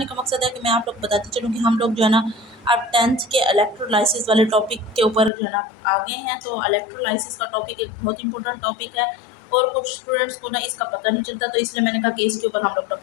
का मकसद है कि मैं आप लोग बताती चलूँ कि हम लोग जो है ना अब 10th के इलेक्ट्रोलाइसिस वाले टॉपिक के ऊपर जो है ना आगे हैं। तो इलेक्ट्रोलाइसिस का टॉपिक एक बहुत इंपॉर्टेंट टॉपिक है और कुछ स्टूडेंट्स को ना इसका पता नहीं चलता, तो इसलिए मैंने कहा कि इसके ऊपर हम लोग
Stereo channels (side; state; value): right; drops out; at 5.3 s